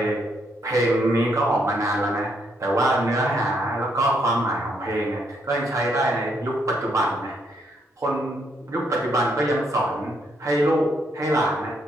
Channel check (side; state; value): both; normal; correlation 0.74